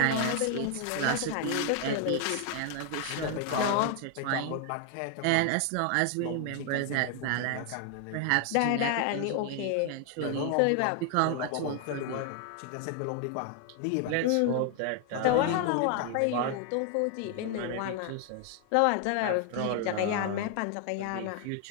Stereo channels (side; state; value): both; different; correlation 0.00